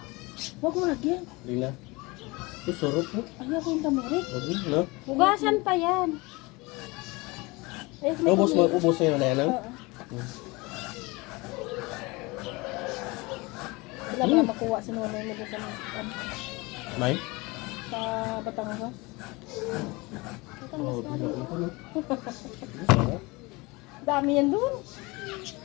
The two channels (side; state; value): right; quieter; 24.4 dB